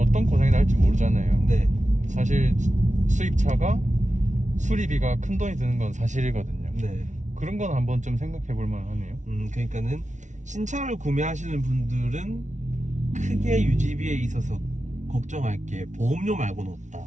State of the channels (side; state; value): left; late; 0.36 ms